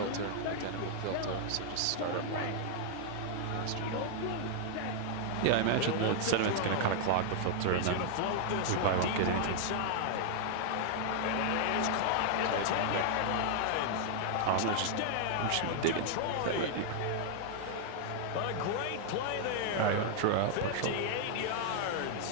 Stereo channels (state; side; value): different; both; correlation -0.01